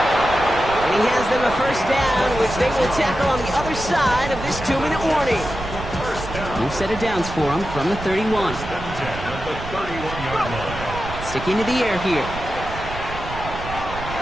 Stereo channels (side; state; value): right; noise; rumble, 10 dB below the sound